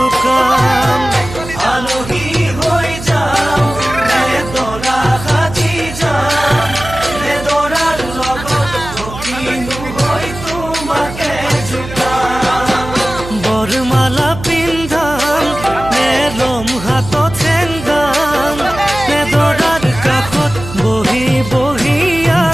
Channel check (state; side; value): noise; right; hum, 11 dB below the sound